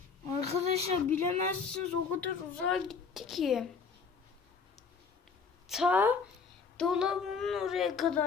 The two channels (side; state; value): right; quieter; 5.4 dB